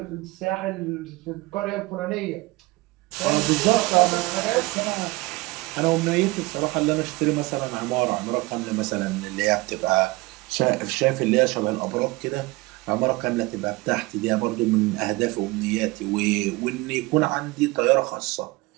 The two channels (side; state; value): left; quieter; 22.2 dB